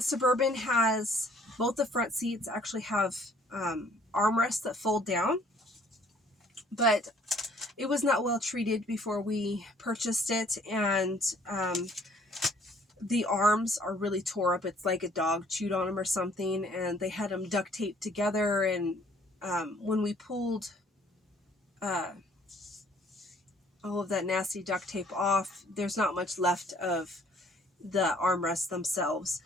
has both the front seats actually have armrests that fold down, but it was not well treated before we purchased it, and the arms are really tore up. It's like a dog chewed on them or something, and they had them duct taped together, and when we pulled all of that nasty duct tape off, there's not much left of the armrests themselves.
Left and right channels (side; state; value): both; normal; correlation 0.60